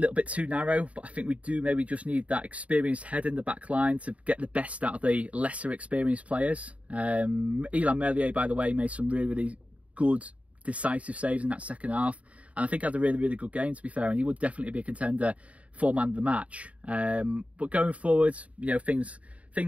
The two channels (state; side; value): late; left; 0.066 ms